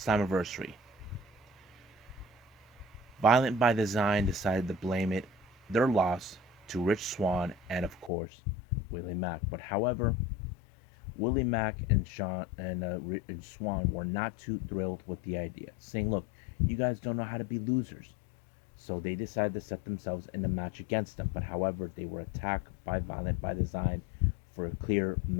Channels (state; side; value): drops out; right; at 8.1 s